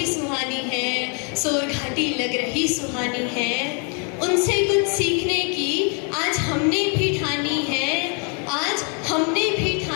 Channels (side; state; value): right; quieter; 37.6 dB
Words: सुहानी है, सोर घाटी लग रही सुहानी है। उनसे कुछ सीखने की आज हमने भी ठानी है, आज हमने भी